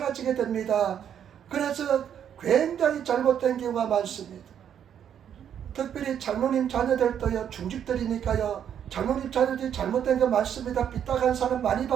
됩니다. 그래서 굉장히 잘못된 경우가 많습니다. 특별히 장로님 자녀들도요, 중직들이니까요, 장로님 자녀들이 잘못된 거 많습니다. 삐딱한 사람 많이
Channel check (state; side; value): quieter; left; 9.1 dB